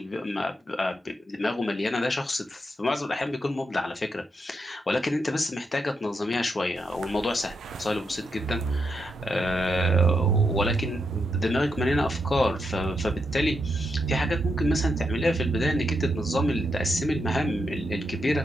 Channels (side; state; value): both; normal; correlation 0.82